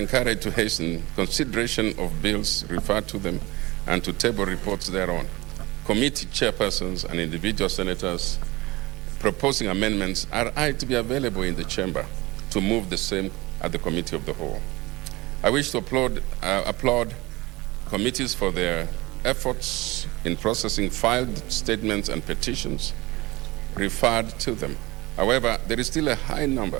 to hasten consideration of bills referred to them and to table reports thereon. Committee chairpersons and individual senators proposing amendments are to be available in the chamber to move the same at the Committee of the Whole. I wish to applaud committees for their efforts in processing filed statements and petitions referred to them. However, there is still a high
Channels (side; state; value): left; quieter; 21.5 dB